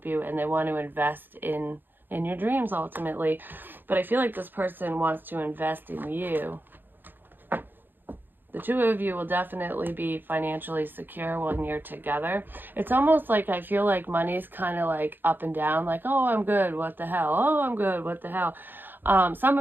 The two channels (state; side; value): late; left; 0.094 ms